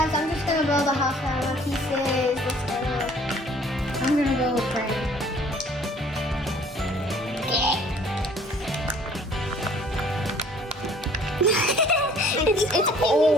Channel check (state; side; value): normal; both; correlation 0.55